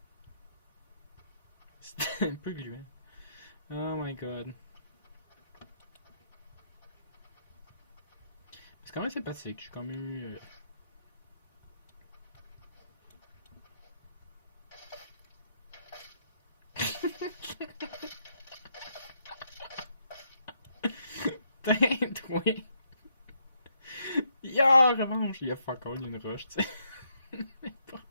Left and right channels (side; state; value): both; inverted; correlation -0.75